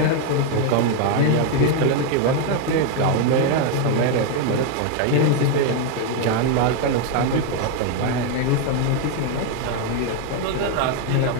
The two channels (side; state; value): both; different; correlation 0.01